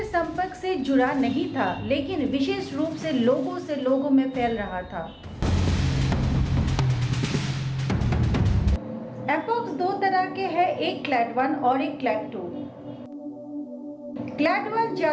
संपर्क से जुड़ा नहीं था, लेकिन विशेष रूप से लोगों में फैल रहा था। एमपॉक्स दो तरह के हैं, एक क्लैड 1 और एक क्लैड 2। क्लैड 1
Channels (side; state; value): both; identical; correlation 1.00